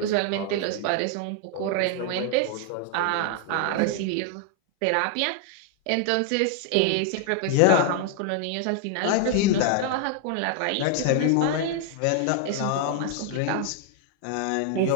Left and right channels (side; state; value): both; different; correlation 0.00